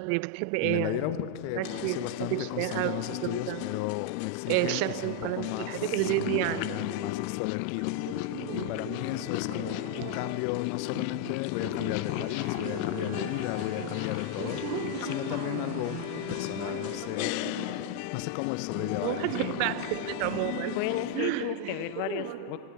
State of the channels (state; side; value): different; both; correlation 0.00